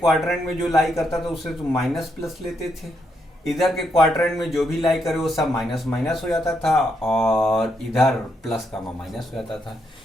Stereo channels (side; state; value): both; normal; correlation 0.79